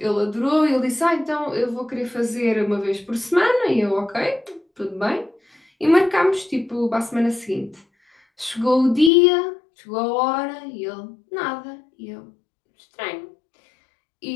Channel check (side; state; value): right; drops out; at 9.1 s